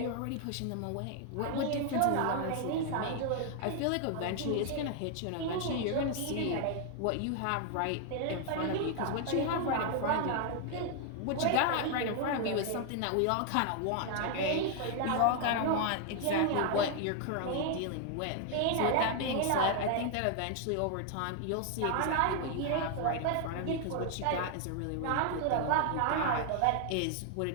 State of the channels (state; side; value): different; both; correlation 0.00